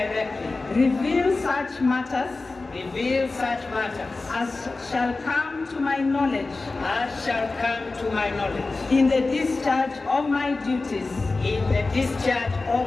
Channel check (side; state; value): right; quieter; 3.6 dB